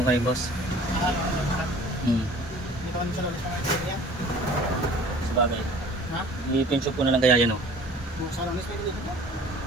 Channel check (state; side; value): normal; both; correlation 0.48